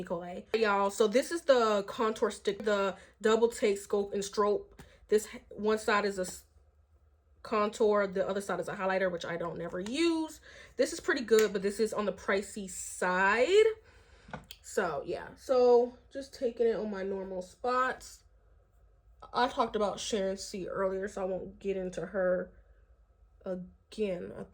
Kola. Y'all, so this is the contour stick, the double take scope and strobe. This one side is a contour, the other side is a highlighter, which I don't never use. This is pretty good, but this is on the pricey side. So yeah, so just taking it on my normal spots. I talked about Sharon C earlier, so I won't get into her again. I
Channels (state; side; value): identical; both; correlation 1.00